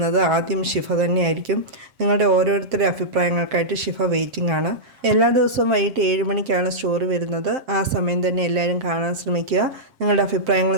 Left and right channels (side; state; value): left; late; 7.6 ms